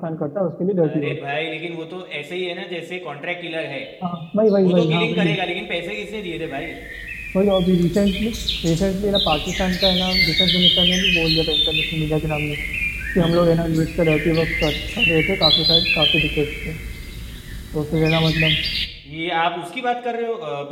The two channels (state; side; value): identical; both; correlation 1.00